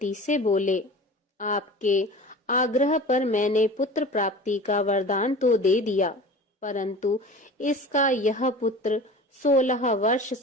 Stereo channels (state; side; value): normal; both; correlation 0.37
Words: से बोले, आपके आग्रह पर मैंने पुत्र प्राप्ति का वरदान तो दे दिया, परंतु इसका यह पुत्र 16 वर्ष